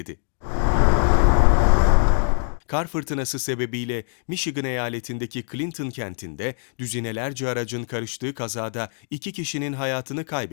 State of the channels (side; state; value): right; silent; digital silence